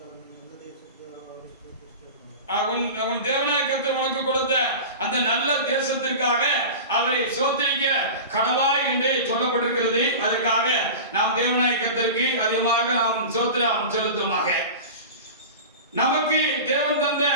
அவன் தேவனாகிய கர்த்தர் உனக்கு கொடுத்த அந்த நல்ல தேசத்திற்காக அவரை ஸ்தோத்திரிக்க கடவாய் என்று சொல்லப்பட்டிருக்கிறது. அதற்காக நாம் தேவனாகிய கர்த்தருக்கு அதிகமாக நாம் ஸ்தோத்திரம் செலுத்துவோமாக. நமக்கு தேவன் தந்த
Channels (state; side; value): inverted; both; correlation -0.31